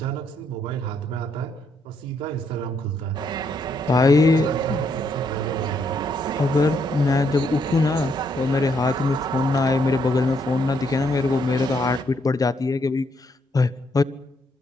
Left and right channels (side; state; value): both; normal; correlation 0.74